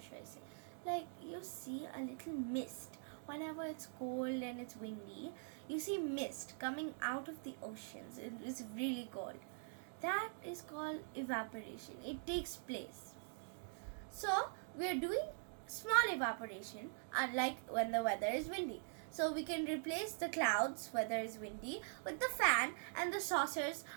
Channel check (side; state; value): left; silent; digital silence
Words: should I say? Like you see a little mist. Whenever it's cold and it's windy, you see mist coming out of the oceans. It's really cold. That is called evaporation. It takes place. So we are doing small evaporation, unlike when the weather is windy. So we can replace the clouds, weather is windy, with the fan, and the saucers